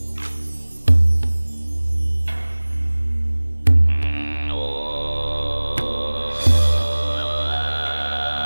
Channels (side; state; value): both; inverted; correlation -1.00